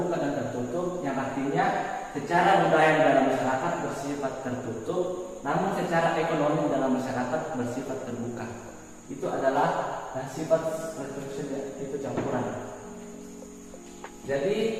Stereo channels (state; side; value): identical; both; correlation 1.00